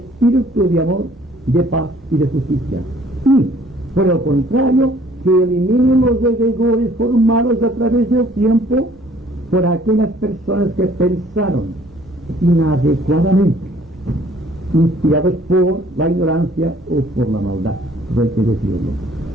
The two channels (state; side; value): normal; both; correlation 0.58